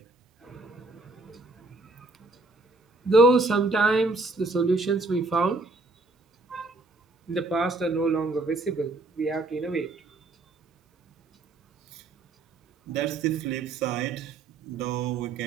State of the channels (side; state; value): left; quieter; 3.2 dB